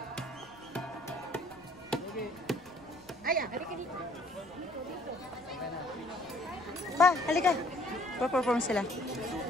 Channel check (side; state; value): left; noise; rumble, 27 dB below the sound